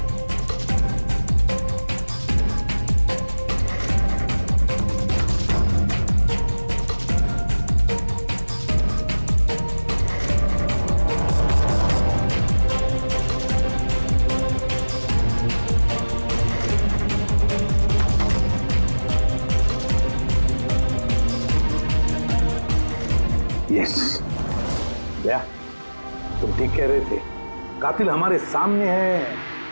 यस भैया, तुम ठीक कह रहे थे, कातिल हमारे सामने है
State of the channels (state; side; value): inverted; both; correlation -1.00